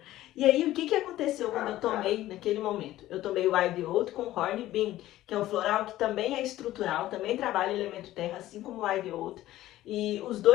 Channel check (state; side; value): quieter; right; 14.9 dB